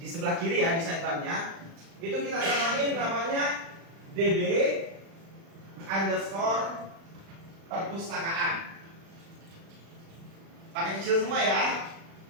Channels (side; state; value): left; late; 36 ms